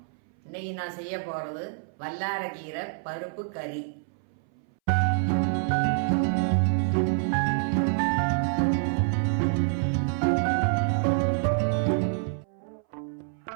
இன்னைக்கு நான் செய்ய போறது வல்லாரக்கீரை பருப்பு கறி.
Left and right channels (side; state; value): left; silent; 60 dB below the other